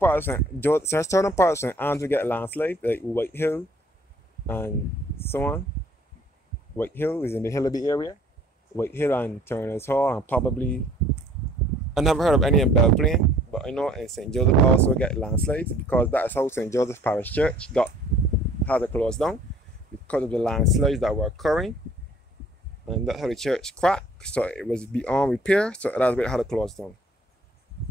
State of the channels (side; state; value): both; normal; correlation 0.56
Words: of St. Andrew get landslides, like White Hill and so on. White Hill is in the Hillaby area. White Hill and Turner's Hall, and probably I never heard of any in Belplain, but I know in St. Joseph also get landslides because that is how St. Joseph Parish Church had to close down, because of the landslides that were occurring, and that's how the church cracked, so it was beyond repair, so that's why it had to close down.